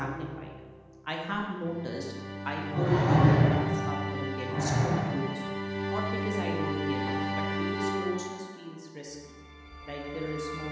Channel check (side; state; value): both; identical; correlation 1.00